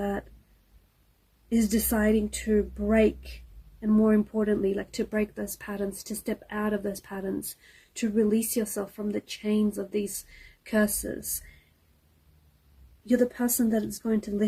is deciding to break, and more importantly, like to break those patterns, to step out of those patterns, to release yourself from the chains of these curses. You're the person that is going to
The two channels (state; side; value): identical; both; correlation 1.00